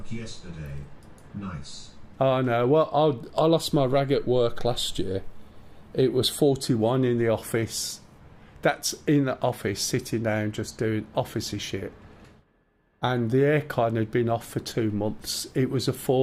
yesterday. Nice. Oh no, well I lost my rag at work last year. It was 41 in the office. That's in the office, sitting down, just doing officey shit. And the aircon had been off for 2 months. It was a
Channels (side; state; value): both; identical; correlation 1.00